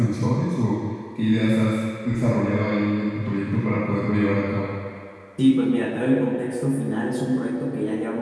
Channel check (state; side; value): identical; both; correlation 1.00